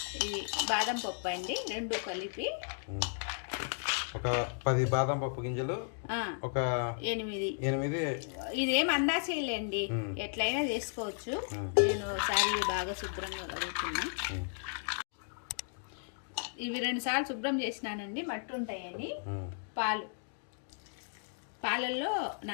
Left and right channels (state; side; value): silent; right; digital silence